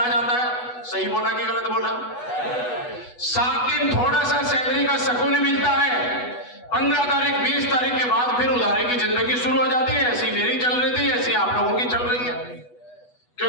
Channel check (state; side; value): late; right; 8.2 ms